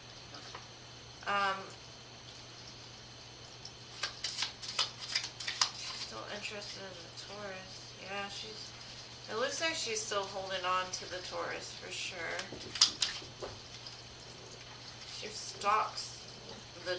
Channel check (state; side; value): identical; both; correlation 1.00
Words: She's still interested in the Taurus. Yeah, it looks like she's still holding on to the Taurus for sure. She stalks the